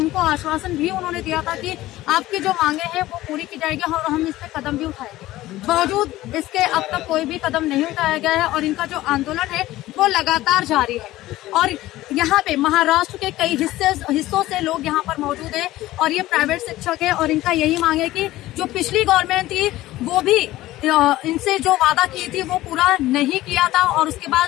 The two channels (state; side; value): quieter; right; 16.3 dB